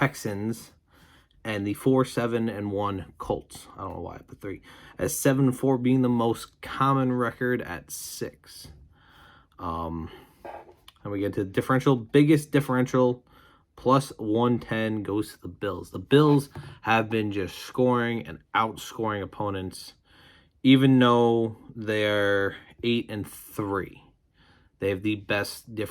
And the 4-7-1 Colts. I don't know why I put 3. As 7-4 being the most common record at 6. And we get to the differential. Biggest differential, plus 110, goes to the Bills. The Bills have been just scoring and outscoring opponents, even though they're 8-3. They have the best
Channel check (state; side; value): identical; both; correlation 1.00